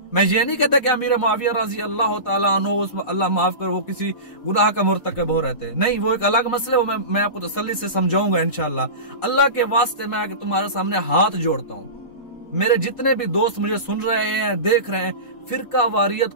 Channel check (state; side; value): late; right; 4.1 ms